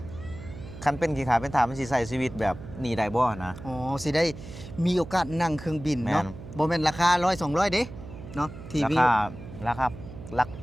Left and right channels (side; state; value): right; noise; hum, 13 dB below the sound